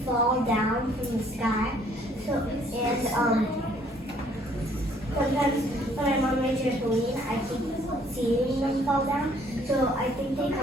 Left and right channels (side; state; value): both; normal; correlation 0.62